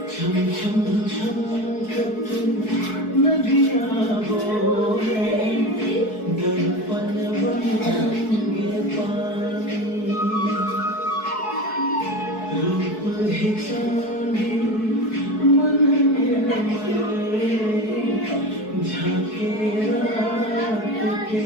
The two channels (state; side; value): late; right; 4.6 ms